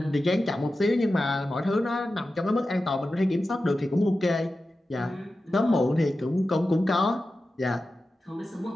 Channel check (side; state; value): both; normal; correlation 0.93